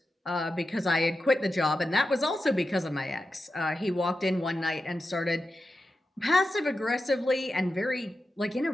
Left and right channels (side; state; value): both; normal; correlation 0.91